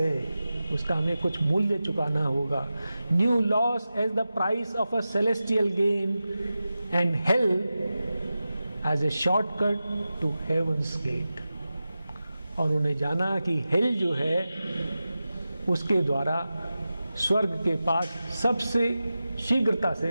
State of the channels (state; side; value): inverted; both; correlation -0.93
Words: उसका हमें कुछ मूल्य चुकाना होगा। New loss as the price of a celestial gain and hell as a shortcut to heaven's gate. और उन्हें जाना कि हेल जो है उसके द्वारा स्वर्ग के पास सबसे शीघ्रता